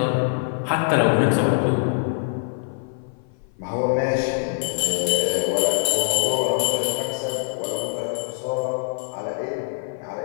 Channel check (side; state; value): right; silent; 56 dB below the other